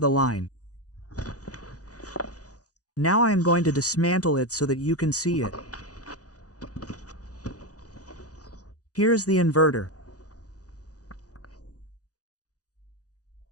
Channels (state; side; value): late; right; 0.67 ms